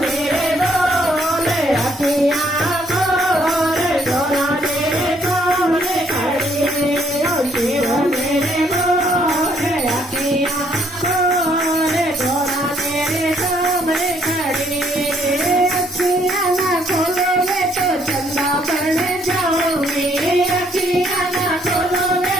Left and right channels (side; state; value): both; normal; correlation 0.67